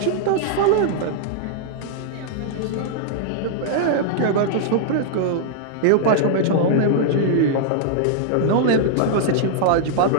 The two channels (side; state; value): both; different; correlation -0.01